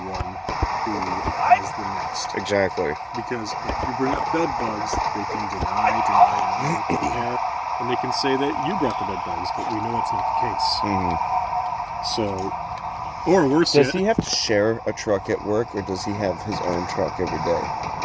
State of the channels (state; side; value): identical; both; correlation 1.00